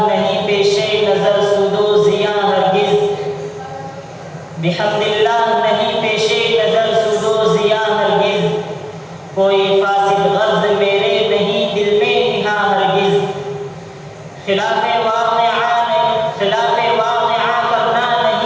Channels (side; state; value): both; identical; correlation 1.00